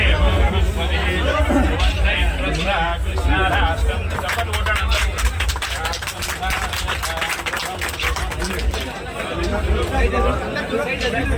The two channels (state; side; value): identical; both; correlation 1.00